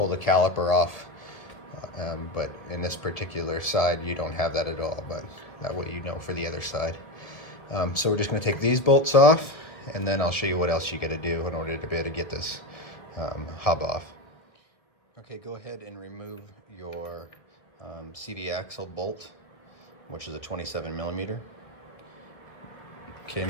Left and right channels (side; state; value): right; late; 2.0 ms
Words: the caliper off. But in this particular side, you don't have that at all, but that way you know for the other side. So we're just going to take these bolts off, and then I'll show you what else you got to do in order to be able to get this hub off. Okay, go ahead and remove your CV axle bolt, which is a 27 millimeter. Okay,